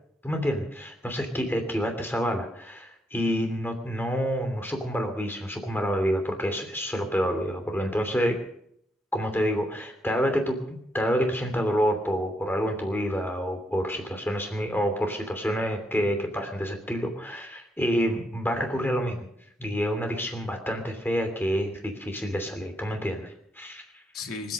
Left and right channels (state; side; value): normal; both; correlation 0.77